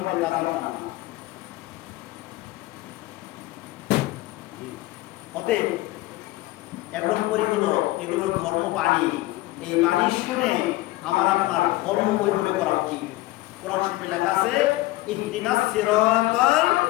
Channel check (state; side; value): quieter; right; 18.3 dB